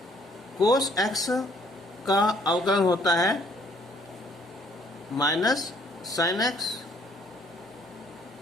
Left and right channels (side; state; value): both; normal; correlation 0.62